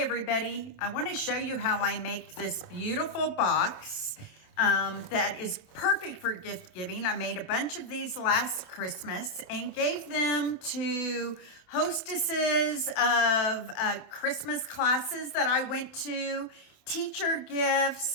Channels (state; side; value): late; right; 27 ms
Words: everybody, I want to show you how I make this beautiful box that is perfect for gift giving. I made a bunch of these last Christmas and gave them to hostesses of Christmas classes that I went to, teacher